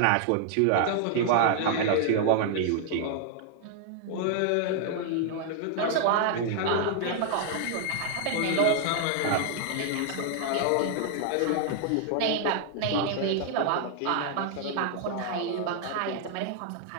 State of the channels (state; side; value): different; both; correlation 0.00